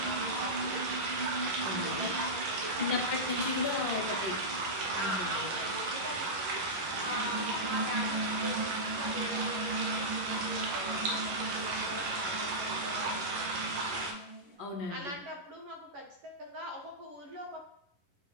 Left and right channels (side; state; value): left; late; 11 ms